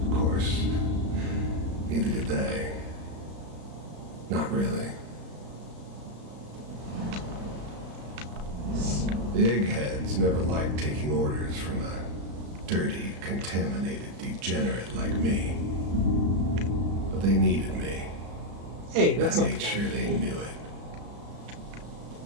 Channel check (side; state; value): left; late; 35 ms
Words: Of course, neither did they. Not really. The eggheads never liked taking orders from a dirty, contaminated degenerate like me. But they needed me. Hey, that's I not made the guy. sure they knew it.